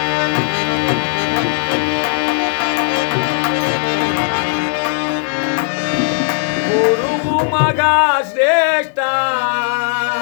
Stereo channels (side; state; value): right; silent; digital silence